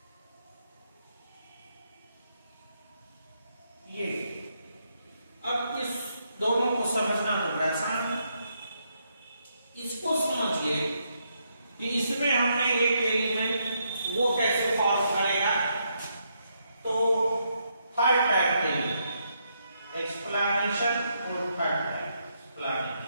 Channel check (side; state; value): both; inverted; correlation -0.77